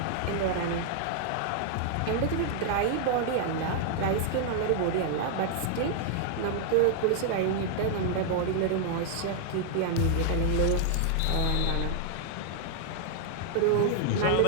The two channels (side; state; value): both; different; correlation 0.00